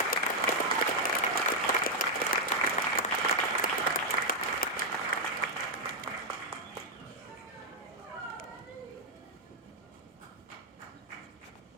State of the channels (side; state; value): both; normal; correlation -0.02